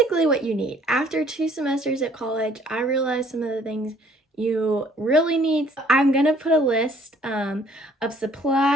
what you need. After 2 semesters at college, I realized some of the things you really need. I'm going to put a list of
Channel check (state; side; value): normal; both; correlation 0.59